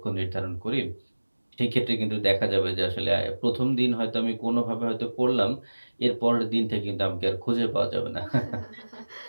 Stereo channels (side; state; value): both; inverted; correlation -1.00